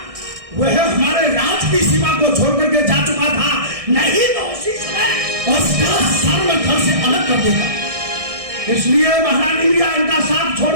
वह हमारे राज की सीमा को छोड़ करके जा चुका था, नहीं तो उसी समय उसका सर में घर से अलग कर देगा। इसलिए महारानी मीरा इनका साथ छोड़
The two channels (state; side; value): late; left; 1.6 ms